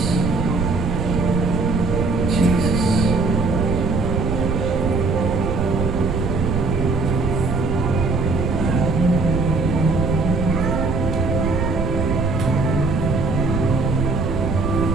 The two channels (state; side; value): noise; right; rumble, 1 dB below the sound